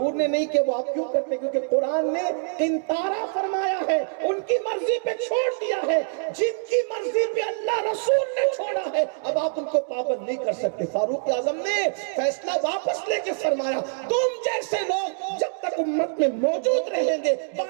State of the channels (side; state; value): left; silent; digital silence